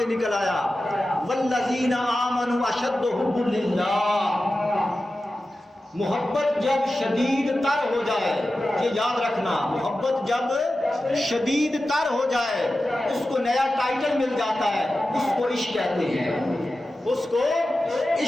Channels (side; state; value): both; normal; correlation 0.93